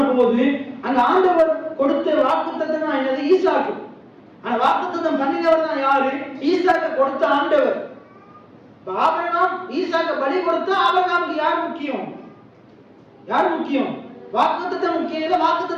போது அங்க ஆண்டவர் கொடுத்த வாக்குத்தத்தம் தான் என்னது? ஈசாக்கு. ஆனா வாக்குத்தத்தம் பண்ணினவர் தான் யாரு? ஈசாக்கு கொடுத்த ஆண்டவர். ஆபிரகாம் ஈசாக்க பலி கொடுத்தா ஆபிரகாமுக்கு யார் முக்கியம்? யார் முக்கியம்? வாக்குத்தத்தம் முக்கியம் இல்ல,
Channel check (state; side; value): identical; both; correlation 1.00